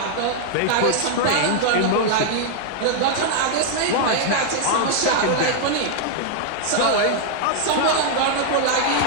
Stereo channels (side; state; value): both; different; correlation -0.01